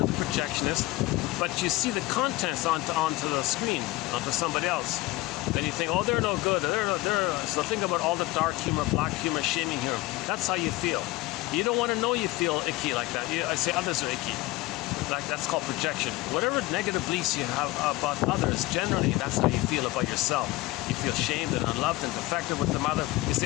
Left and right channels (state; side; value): quieter; right; 19.4 dB